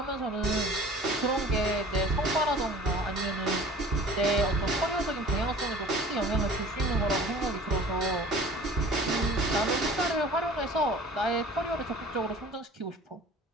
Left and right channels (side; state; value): both; normal; correlation 0.46